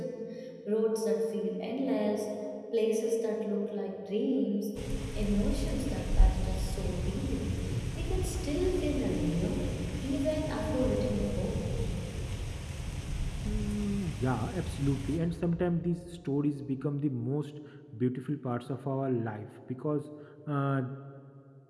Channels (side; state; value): both; identical; correlation 1.00